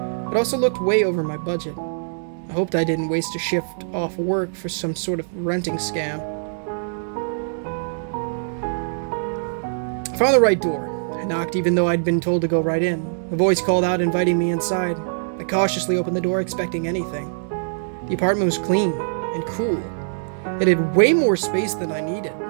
It also looked way over my budget. I hoped I didn't waste a shift off work for some sort of renting scam. I found the right door. I knocked even though I'd been told to go right in. A voice called out, inviting me inside. I cautiously opened the door, expecting anything. The apartment was clean and cool. It had way more space than I needed.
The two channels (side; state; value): left; silent; digital silence